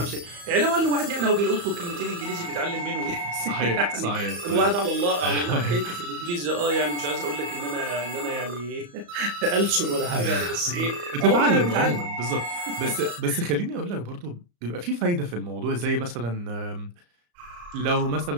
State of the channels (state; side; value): late; left; 34 ms